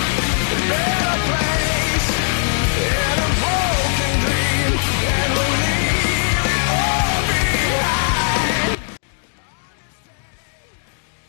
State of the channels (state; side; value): silent; right; digital silence